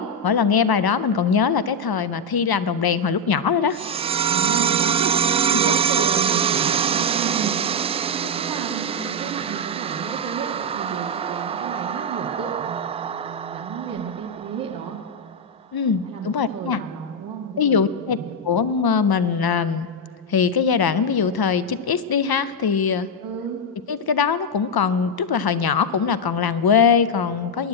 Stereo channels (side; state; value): both; normal; correlation 0.02